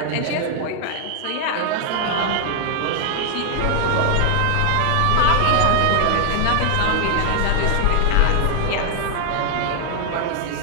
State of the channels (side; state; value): both; different; correlation 0.00